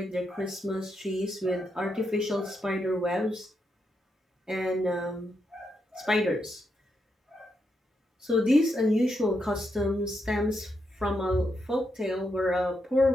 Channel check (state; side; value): normal; both; correlation 0.82